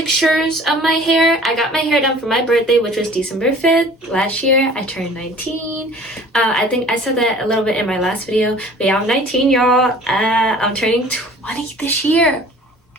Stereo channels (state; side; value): normal; both; correlation 0.48